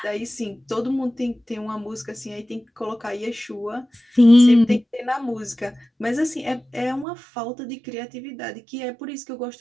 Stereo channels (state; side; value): drops out; left; at 7.1 s